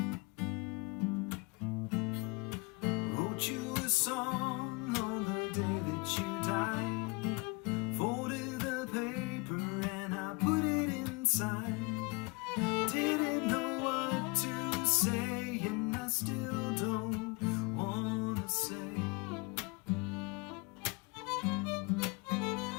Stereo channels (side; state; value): right; quieter; 28.8 dB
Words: Wrote you a song on the day that you died, folded the paper and I put it inside. Didn't know what to say, and I still don't wanna say